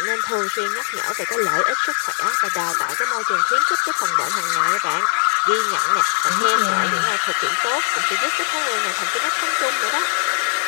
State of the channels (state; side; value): silent; right; digital silence